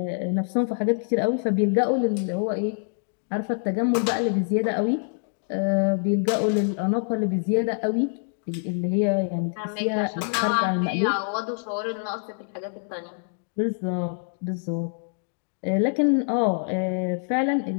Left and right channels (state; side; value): silent; right; 61 dB below the other